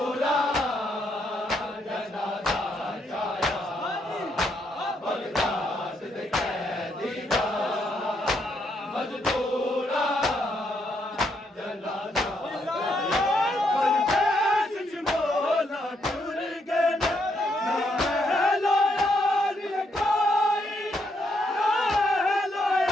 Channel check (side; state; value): both; normal; correlation 0.76